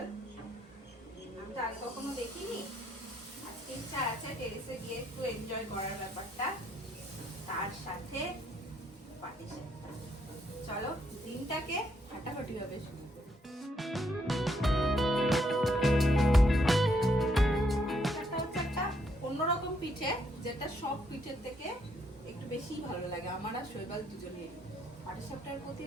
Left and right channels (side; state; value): both; normal; correlation 0.73